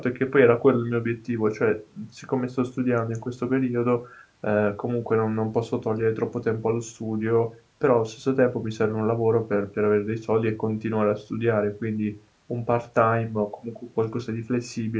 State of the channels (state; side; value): identical; both; correlation 1.00